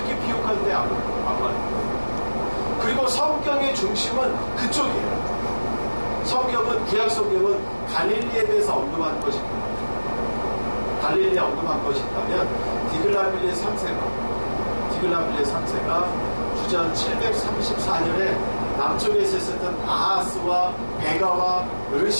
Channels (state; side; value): inverted; both; correlation -1.00